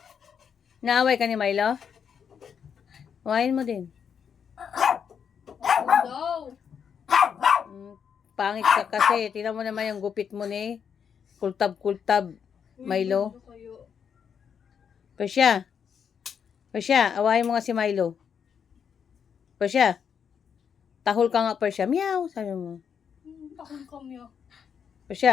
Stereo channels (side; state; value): right; quieter; 7.4 dB